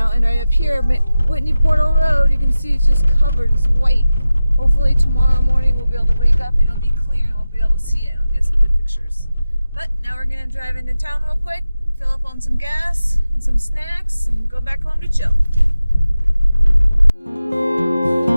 right up here, Whitney Portal Road, you can see it's just covered. It's white. Hopefully tomorrow morning we'll be able to wake up and it'll be clear and we'll be able to see it and we'll get some good pictures. But now we're going to drive into town real quick, fill up on some gas and some snacks, and go back home to chill.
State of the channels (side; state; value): both; inverted; correlation -0.94